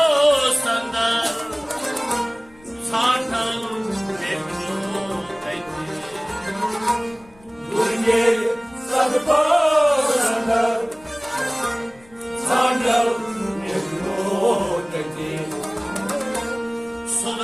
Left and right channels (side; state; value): left; noise; rumble, 27 dB below the sound